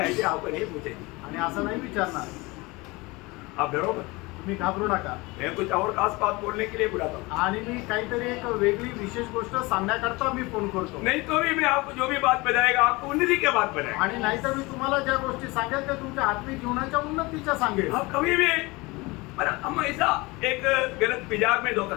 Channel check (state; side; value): quieter; right; 23.7 dB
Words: ऐसे आपको नहीं पूछेगी, आणि असं नाही विचारणार. आप डरो मत. तुम्ही घाबरू नका. मैं कुछ और खास बात बोलने के लिए बुलाता हूँ, आणि मी काहीतरी एक वेगळी विशेष गोष्ट सांगण्याकरता मी फोन करतो. नहीं तो भी मैं आपको जो भी बात बताएगा आपको उन्नति की बात बताएगा. आणि नाहीतर मी तुम्हाला ज्या गोष्टी सांगेल त्या तुमच्या आत्मिक जीवनाच्या उन्नतीच्या सांगेल. आप कभी भी, पर हम ऐसा एक गलत मिजाज में धोखा